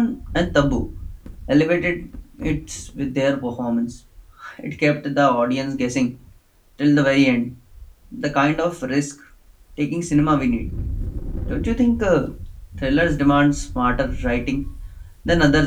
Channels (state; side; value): identical; both; correlation 1.00